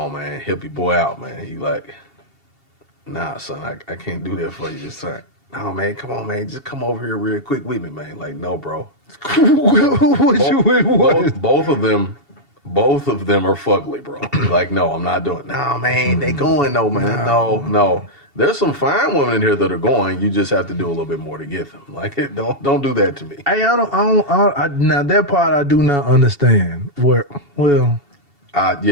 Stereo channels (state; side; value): late; left; 2.7 ms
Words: man, help your boy out, man. He like, nah son, I can't do that for you this time. No man, come on man, just come over here real quick with me, man. Like, no bro. Both of them are fugly, bro. Like, no, I'm not doing it. No, man, they going though, man. No. There's some fine women in here that are going. You just have to do a little bit more to get them. Like, don't do that to me. Hey, now that part I do not understand.